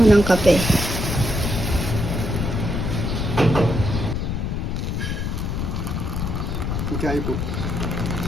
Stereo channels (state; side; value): noise; left; rumble, 1 dB below the sound